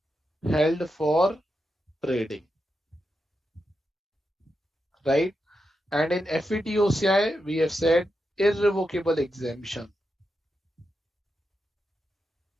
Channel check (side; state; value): both; normal; correlation 0.87